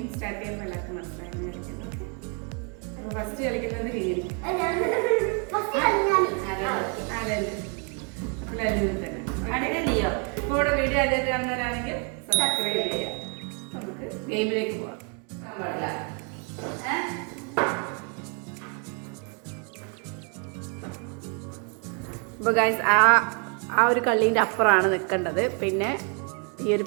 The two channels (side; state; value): left; quieter; 37.7 dB